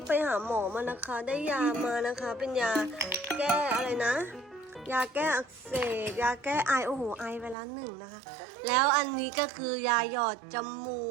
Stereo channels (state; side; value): drops out; left; at 7.6 s